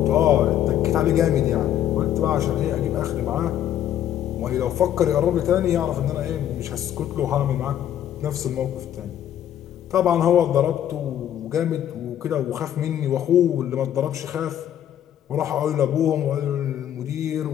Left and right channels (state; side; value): quieter; right; 10.9 dB